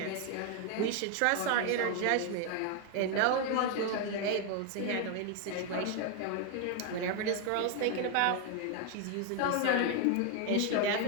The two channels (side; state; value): both; different; correlation 0.01